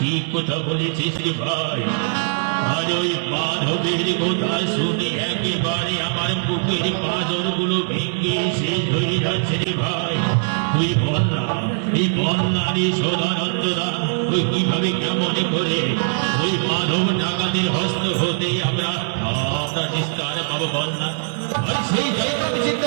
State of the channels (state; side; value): silent; left; digital silence